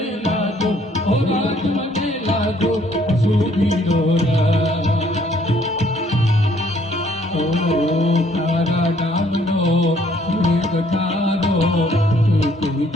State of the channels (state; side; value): normal; both; correlation 0.63